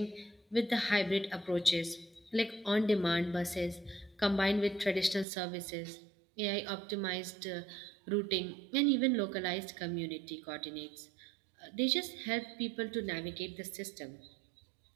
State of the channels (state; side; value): drops out; left; at 5.2 s